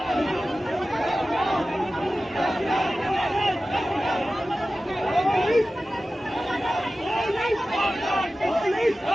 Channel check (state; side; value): normal; both; correlation 0.95